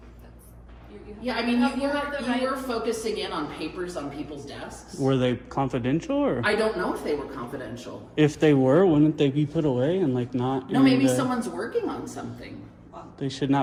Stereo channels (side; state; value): both; identical; correlation 1.00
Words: that's you have Yeah, I to- mean, you have the right- you were focusing in on papers on people's desks. Were they confidential or? I don't know if they were confidential. If they were, wouldn't they be put away and like not? No, in maybe the- someone's working on something. They should